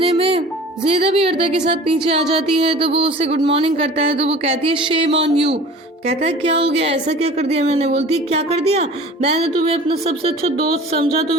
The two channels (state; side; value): normal; both; correlation 0.42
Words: में ज़ेदा भी अर्दा के साथ नीचे आ जाती है। तो वो उससे गुड मॉर्निंग करता है। तो वो कहती है शेम ऑन यू। कहता है क्या हो गया, ऐसा क्या कर दिया मैंने। बोलती है क्या कर दिया, मैंने तुम्हें अपना सबसे अच्छा दोस्त समझा,